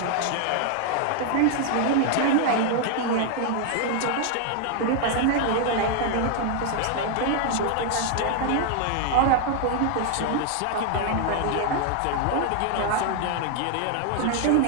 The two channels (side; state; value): both; different; correlation 0.00